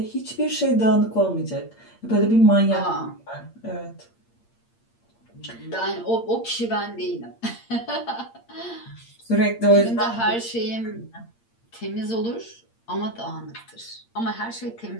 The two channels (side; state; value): right; late; 8.7 ms